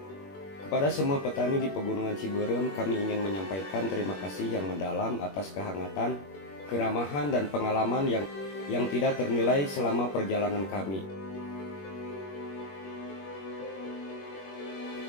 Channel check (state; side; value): late; right; 21 ms